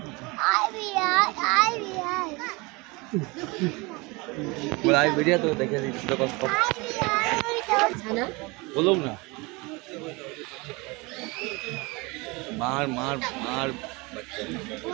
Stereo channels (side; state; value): left; quieter; 25.9 dB